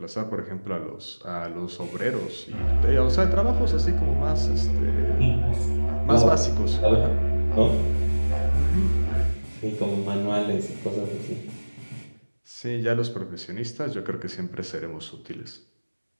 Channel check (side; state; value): both; inverted; correlation -1.00